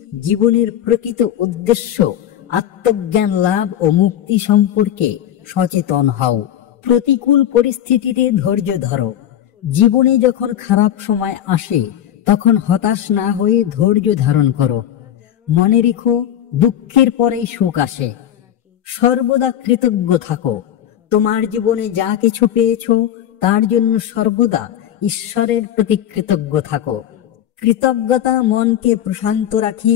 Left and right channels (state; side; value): quieter; right; 10.9 dB